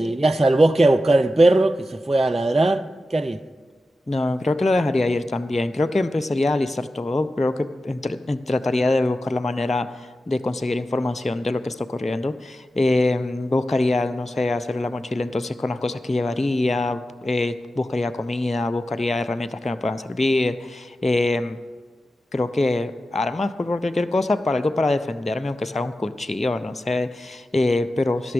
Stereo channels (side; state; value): both; normal; correlation 0.92